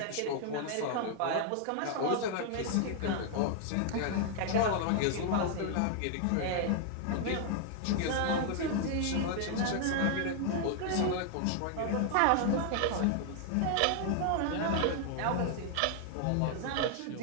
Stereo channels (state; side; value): different; both; correlation 0.00